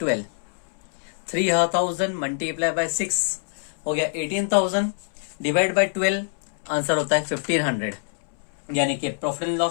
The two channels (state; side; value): silent; right; 62 dB below the other